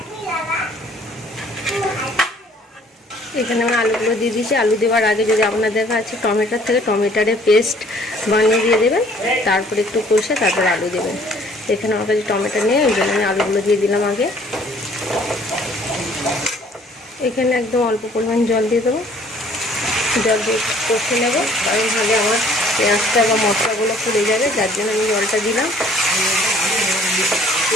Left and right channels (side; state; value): both; normal; correlation 0.57